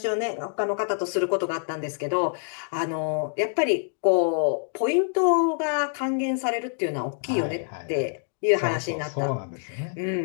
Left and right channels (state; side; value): silent; right; digital silence